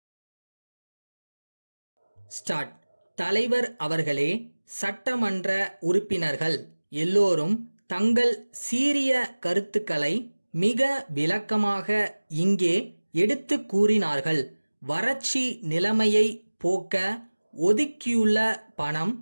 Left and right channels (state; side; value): inverted; both; correlation -1.00